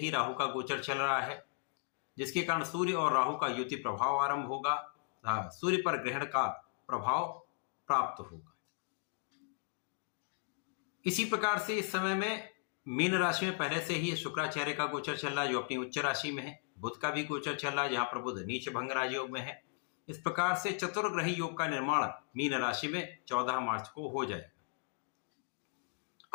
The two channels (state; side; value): silent; right; 53 dB below the other